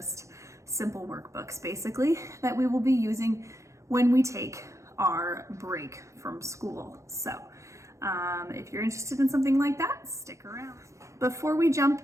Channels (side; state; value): left; late; 0.15 ms